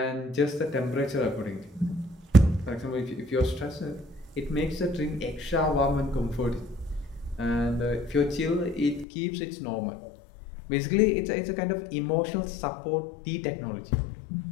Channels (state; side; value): drops out; right; at 9.1 s